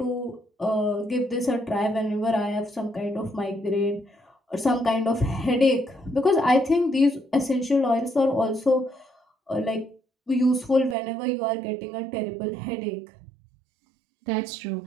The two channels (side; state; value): left; drops out; at 11.0 s